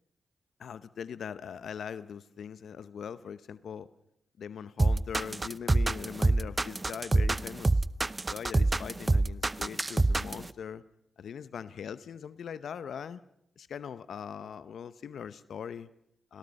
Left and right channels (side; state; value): both; normal; correlation 0.95